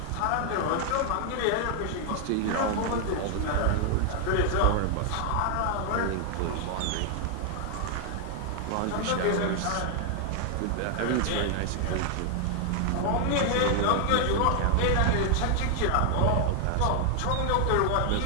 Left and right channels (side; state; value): both; different; correlation 0.00